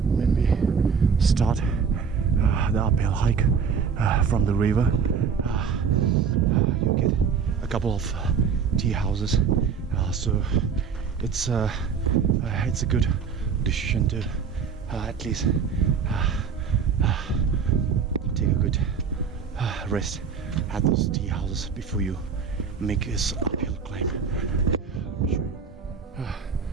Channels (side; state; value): left; quieter; 6.3 dB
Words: when we start the uphill hike from the river, you get a couple of tea houses, so it's a good decision to at least take a good rest at those tea houses before you make this uphill climb. Let me show you.